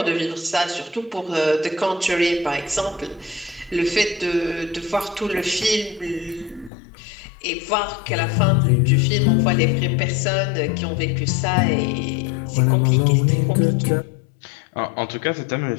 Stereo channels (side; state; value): right; drops out; at 6.7 s